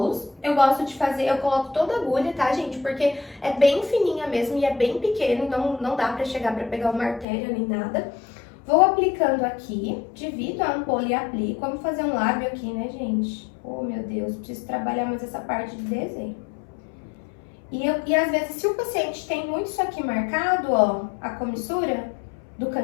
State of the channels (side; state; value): right; drops out; at 7.2 s